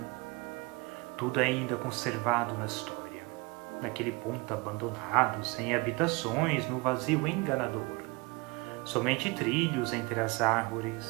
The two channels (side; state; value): left; quieter; 26.1 dB